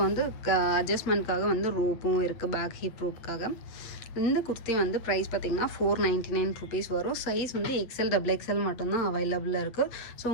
வந்து அட்ஜஸ்ட்மெண்ட்காக வந்து ரோப்பும் இருக்குது, பேக் ஹிப் ரோப்புக்காக. இந்த குர்த்தி வந்து ப்ரைஸ் பார்த்திங்கன்னா 499 ருபீஸ் வரும். சைஸ் வந்து XL XXL மட்டும்தான் அவைலபிளாக இருக்குது. ஸோ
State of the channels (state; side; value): late; right; 8.7 ms